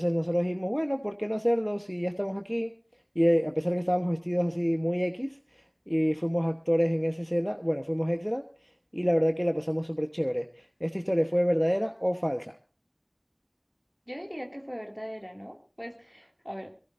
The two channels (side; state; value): both; identical; correlation 1.00